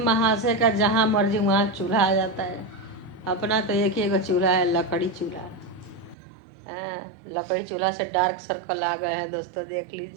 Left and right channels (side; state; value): left; drops out; at 6.2 s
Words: का जहाँ मर्जी वहाँ चूल्हा आ जाता है। अपना तो एक ही एगो चूल्हा है, लकड़ी चूल्हा। हाँ, लकड़ी चूल्हा से डार्क सर्कल आ गए हैं दोस्तों, देख